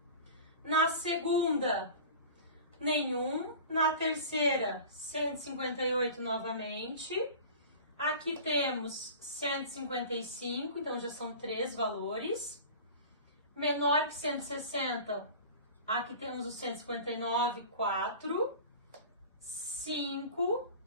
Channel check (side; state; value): both; inverted; correlation -0.37